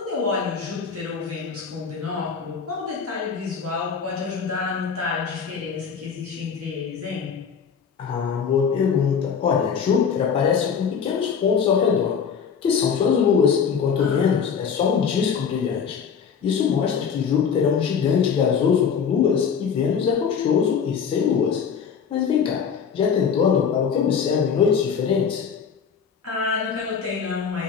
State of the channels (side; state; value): right; quieter; 6.6 dB